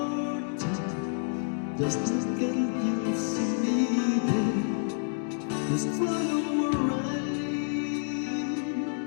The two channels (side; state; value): right; silent; 59 dB below the other